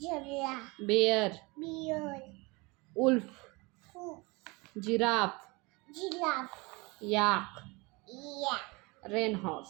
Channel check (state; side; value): quieter; left; 26.0 dB